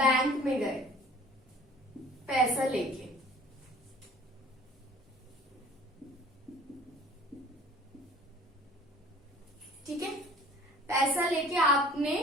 में गए पैसा लेके, ठीक है, पैसा लेके आपने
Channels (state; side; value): normal; both; correlation 0.50